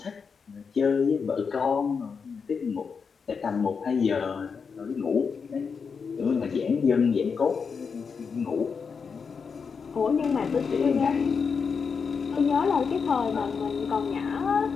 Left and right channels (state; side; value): quieter; right; 5.7 dB